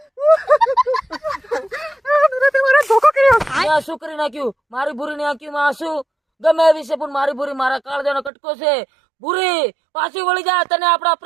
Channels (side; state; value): left; drops out; at 8.3 s